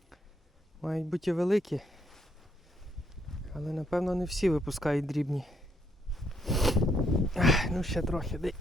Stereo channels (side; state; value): both; normal; correlation 0.74